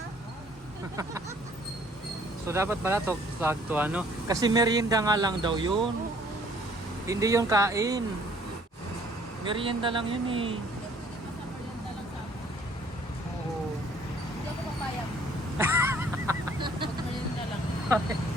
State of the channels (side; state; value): both; normal; correlation 0.59